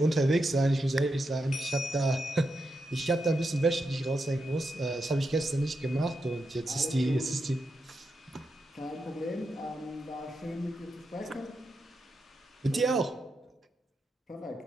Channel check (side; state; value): both; normal; correlation 0.86